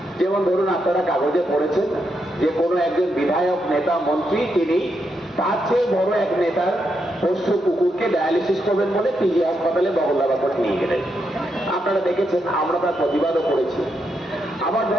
যেমন ধরুন, আপনারা কাগজে পড়েছেন যে কোনো একজন বিধায়ক, নেতা, মন্ত্রী তিনি তার চেয়ে বড় এক নেতার পোষ্য কুকুরকে ডায়ালিসিস করবেন বলে পিজি হাসপাতালে বগলদাবা করে নিয়ে গেলেন। আপনারা দেখেছেন, আমরা তার প্রতিবাদও করেছি। আবার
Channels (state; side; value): normal; both; correlation 0.82